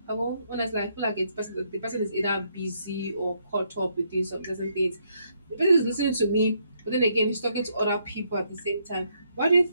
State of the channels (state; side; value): inverted; both; correlation -0.73